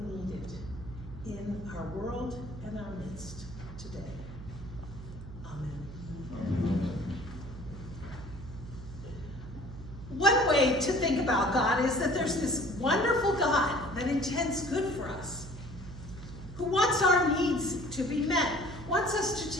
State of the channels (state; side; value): noise; right; hum, 12 dB below the sound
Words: in our world and our midst today. Amen. One way to think about God is that there's this wonderful God that intends good for us, who wants our needs to be met, wants us